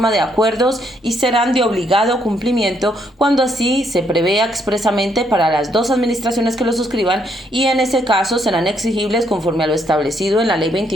de acuerdos y serán de obligado cumplimiento cuando así se prevea expresamente para las dos administraciones que lo suscriban, y en ese caso serán exigibles conforme a lo establecido en la Ley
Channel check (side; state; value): both; normal; correlation 0.72